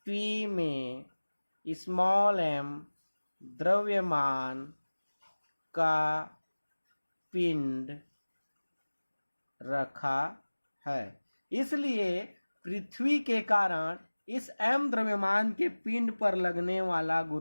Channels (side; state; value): both; inverted; correlation -1.00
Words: P में स्मॉल m द्रव्यमान का पिंड रखा है। इसलिए पृथ्वी के कारण इस m द्रव्यमान के पिंड पर लगने वाला